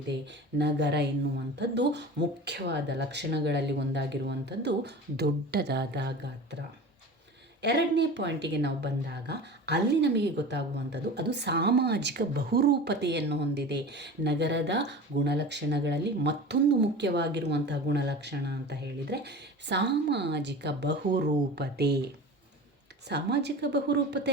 ನಗರ ಎನ್ನುವಂಥದ್ದು. ಮುಖ್ಯವಾದ ಲಕ್ಷಣಗಳಲ್ಲಿ ಒಂದಾಗಿರುವಂಥದ್ದು ದೊಡ್ಡದಾದ ಗಾತ್ರ. ಎರಡನೇ ಪಾಯಿಂಟಿಗೆ ನಾವು ಬಂದಾಗ ಅಲ್ಲಿ ನಮಗೆ ಗೊತ್ತಾಗುವಂಥದ್ದು ಅದು ಸಾಮಾಜಿಕ ಬಹುರೂಪತೆಯನ್ನು ಹೊಂದಿದೆ. ನಗರದ ಗುಣಲಕ್ಷಣಗಳಲ್ಲಿ ಮತ್ತೊಂದು ಮುಖ್ಯವಾಗಿರುವಂತಹ ಗುಣಲಕ್ಷಣ ಅಂತ ಹೇಳಿದರೆ ಸಾಮಾಜಿಕ ಬಹುರೂಪತೆ. ಸಾಮಾಜಿಕ ಬಹುರೂಪತೆ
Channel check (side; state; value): both; normal; correlation 0.35